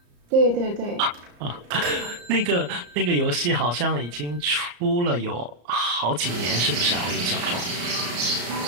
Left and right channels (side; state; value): left; late; 34 ms